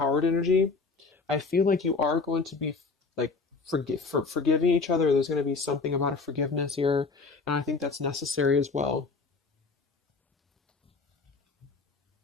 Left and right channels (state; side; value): quieter; right; 4.2 dB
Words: energy. I feel like you are going to be like forgiving each other. There's going to be something about a forgiveness here, and I think that's necessary as well.